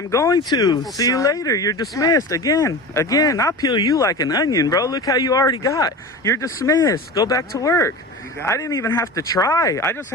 going to. See you later. You're dismissed. Again. I'll peel you like an onion, bro. Look how you already got. You're dismissed. Go back to work. I didn't even have to try. I just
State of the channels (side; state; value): both; normal; correlation 0.31